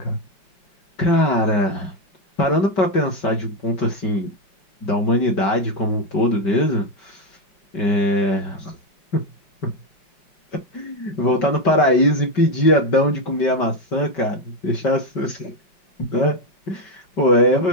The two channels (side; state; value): right; late; 5.2 ms